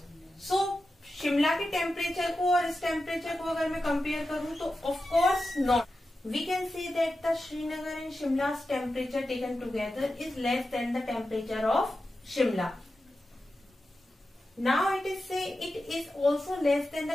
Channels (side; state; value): both; normal; correlation 0.92